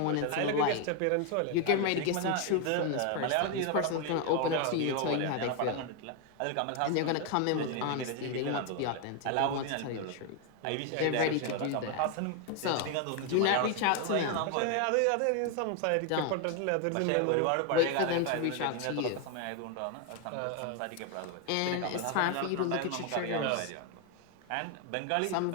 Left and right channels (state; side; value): different; both; correlation 0.01